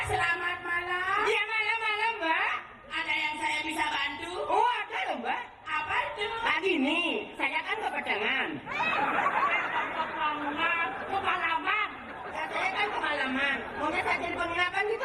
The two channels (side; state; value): both; identical; correlation 1.00